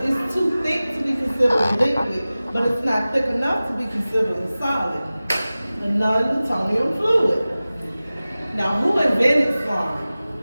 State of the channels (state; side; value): inverted; both; correlation -0.97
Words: it's too thick to be considered a liquid, but it's not thick enough to be considered a solid. A non-Newtonian fluid. Now, who invented slime?